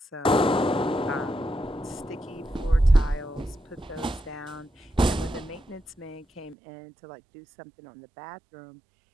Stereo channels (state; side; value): drops out; left; at 6.6 s